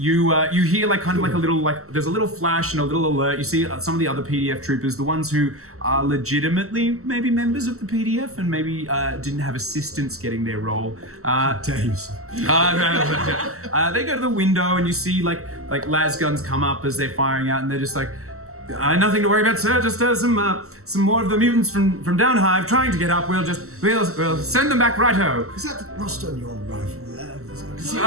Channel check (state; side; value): late; left; 0.63 ms